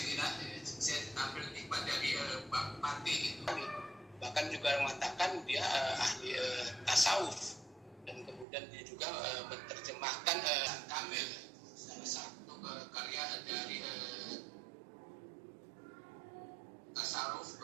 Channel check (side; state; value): left; drops out; at 8.5 s